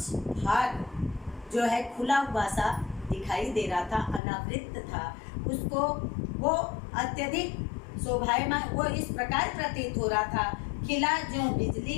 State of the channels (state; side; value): drops out; right; at 4.2 s